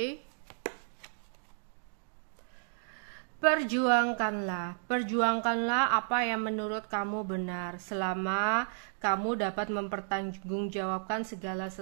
Perjuangkanlah apa yang menurut kamu benar, selama kamu dapat mempertanggungjawabkan segala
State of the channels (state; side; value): silent; left; digital silence